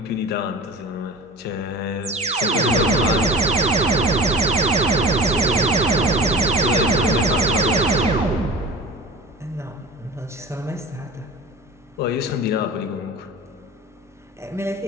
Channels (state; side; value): normal; both; correlation 0.35